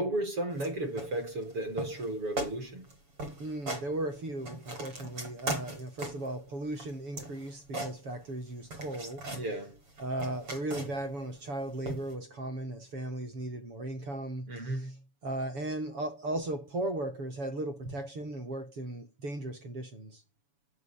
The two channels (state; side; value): late; left; 7.1 ms